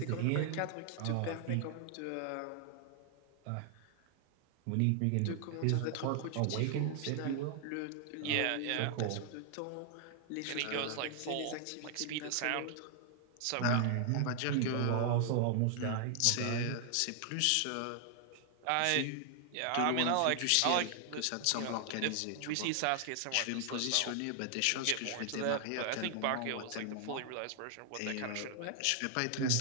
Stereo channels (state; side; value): different; both; correlation 0.00